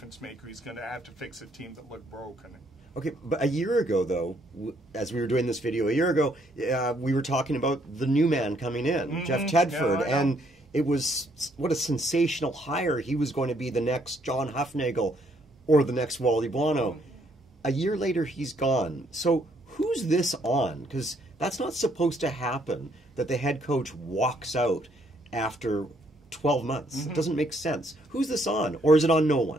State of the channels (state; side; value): normal; both; correlation 0.69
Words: maker. He's going to have to fix a team that looked broken. Okay, but a year ago, though, as we were doing this video a year ago, we were talking about the new man coming in, Jeff Tedford, and it was, what a sensational hire. He was going to be the next John Hufnagel or the next Wally Buono. A year later, he's gone. So who's this on? Because that's not supposed to happen, that the head coach walks out after 12 months. It doesn't make sense. Who's this on? Or is it on no